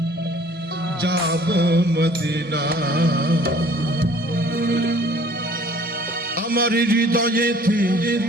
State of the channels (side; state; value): both; normal; correlation 0.54